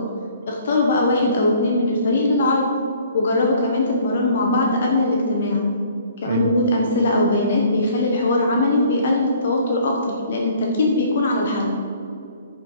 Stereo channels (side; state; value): both; inverted; correlation -0.56